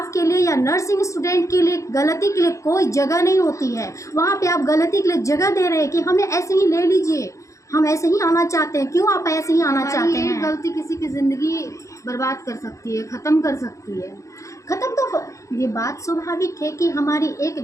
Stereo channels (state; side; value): late; right; 0.15 ms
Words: के लिए या नर्सिंग स्टूडेंट के लिए गलती के लिए कोई जगह नहीं होती है, वहाँ पे आप गलती के लिए जगह दे रहे हैं कि हमें ऐसे ही ले लीजिए, हम ऐसे ही आना चाहते हैं। क्यों आप ऐसे ही आना चाहते हैं? गलती किसी की ज़िंदगी बर्बाद कर सकती है, ख़त्म कर सकती है। ख़त्म तो ये बात स्वाभाविक है कि हमारी एक